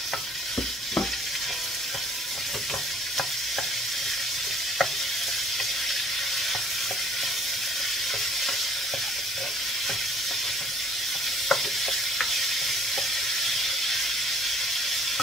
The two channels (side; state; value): both; normal; correlation 0.57